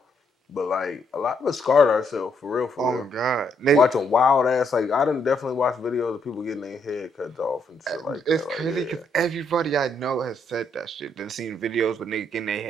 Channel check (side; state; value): both; normal; correlation 0.74